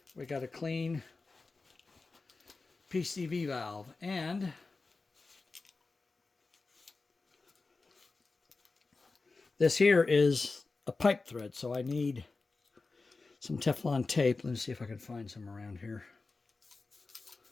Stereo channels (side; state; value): right; quieter; 3.8 dB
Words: we got a clean PCV valve, and this here is a pipe thread, so I need some Teflon tape. Let me see if I can find some around here.